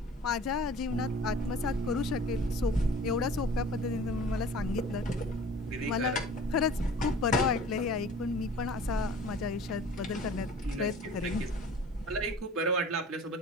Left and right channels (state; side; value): normal; both; correlation 0.45